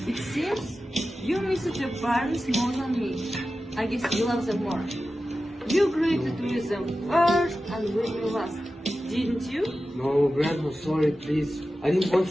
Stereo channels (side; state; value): both; normal; correlation 0.93